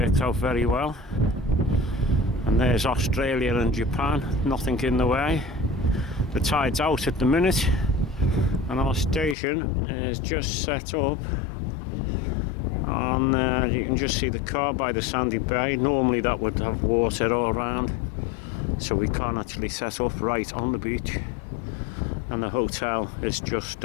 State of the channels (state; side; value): drops out; right; at 9.3 s